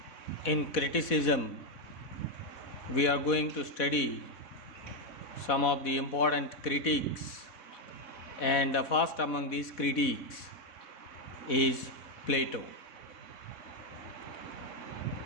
in criticism, we are going to study some of the important critiques, and the first among these critiques is Plato.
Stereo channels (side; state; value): right; late; 4.1 ms